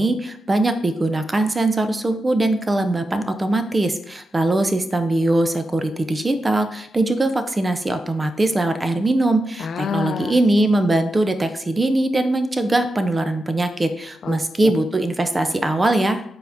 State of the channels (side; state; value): both; normal; correlation 0.89